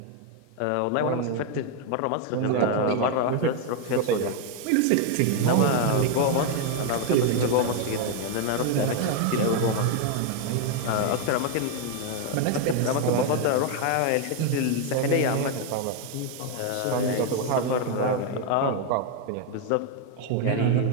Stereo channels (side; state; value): both; different; correlation 0.01